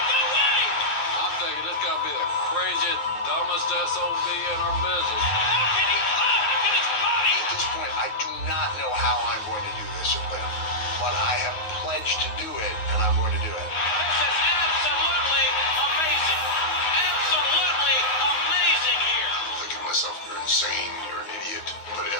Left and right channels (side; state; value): right; late; 9.5 ms